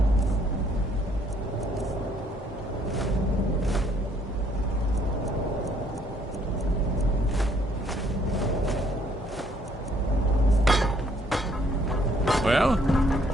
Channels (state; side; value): normal; both; correlation 0.65